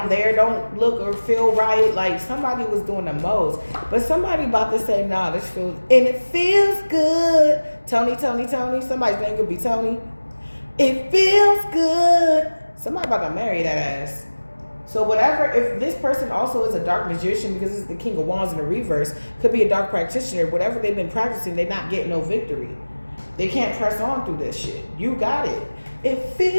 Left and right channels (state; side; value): inverted; both; correlation -1.00